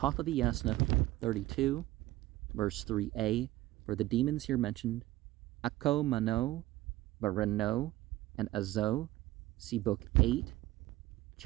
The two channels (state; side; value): quieter; left; 16.6 dB